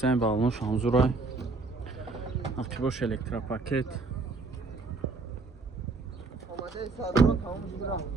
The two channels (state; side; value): quieter; left; 3.8 dB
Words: балонош ҳамзурай. ақибош электропакет.